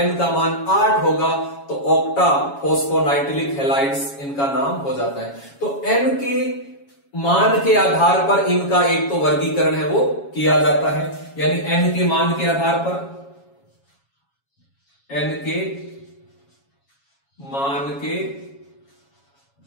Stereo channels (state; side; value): late; right; 7.2 ms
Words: का मान 8 होगा तो ऑक्टा फोस्फोनाइट्रिलिक हैलाइड्स इनका नाम हो जाता है। तो n के मान के आधार पर इनका एक तो वर्गीकरण है वो किया जाता है, यानी n के मान के आधार पर